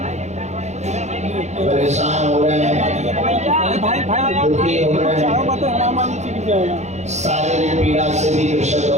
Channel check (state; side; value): late; left; 0.33 ms